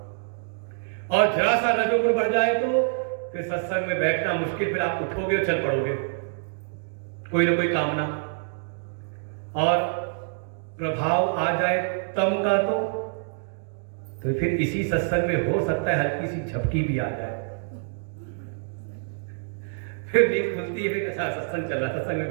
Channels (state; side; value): silent; left; digital silence